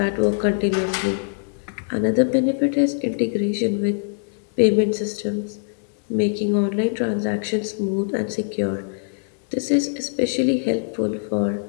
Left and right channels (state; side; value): silent; right; 64 dB below the other